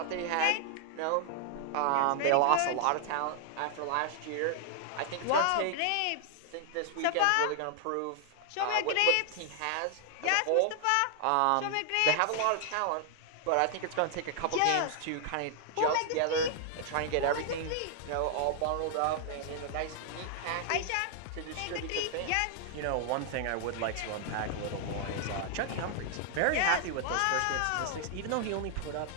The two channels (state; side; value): different; both; correlation 0.00